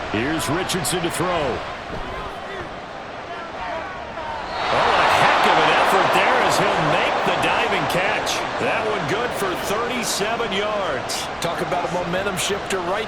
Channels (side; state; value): both; identical; correlation 1.00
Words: Here's Richardson to throw. Oh, a heck of an effort there as he'll make the diving catch. That one good for 37 yards. Talk about a momentum shifter right